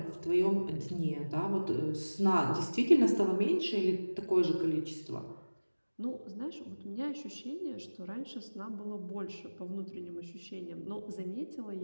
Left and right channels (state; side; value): inverted; both; correlation -1.00